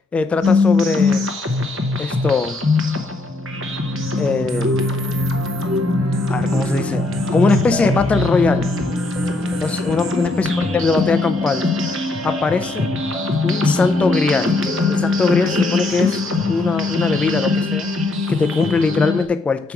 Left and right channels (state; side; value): quieter; right; 3.0 dB